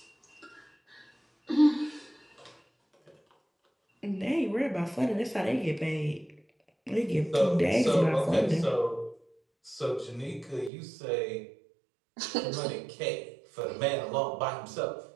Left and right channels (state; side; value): drops out; left; at 10.7 s